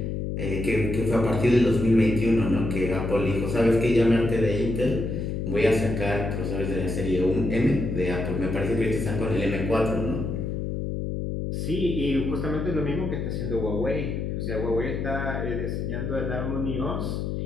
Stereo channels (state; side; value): noise; left; hum, 2 dB below the sound